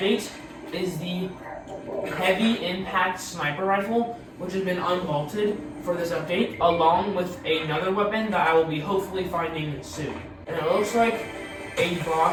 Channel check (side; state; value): both; identical; correlation 1.00